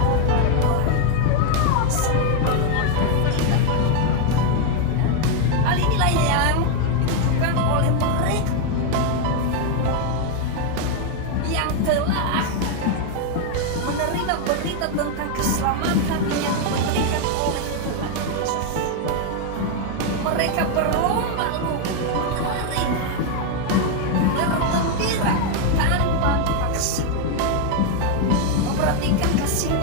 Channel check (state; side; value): different; both; correlation 0.00